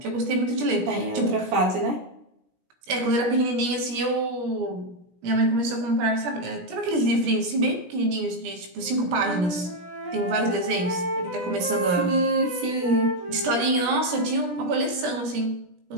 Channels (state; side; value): late; left; 17 ms